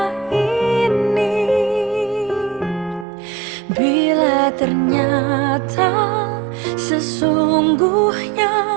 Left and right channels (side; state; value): left; drops out; at 3.1 s